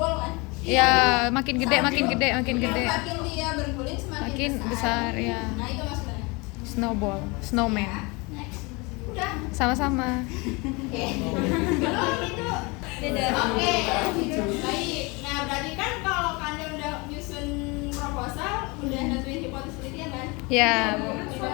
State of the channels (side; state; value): right; quieter; 27.0 dB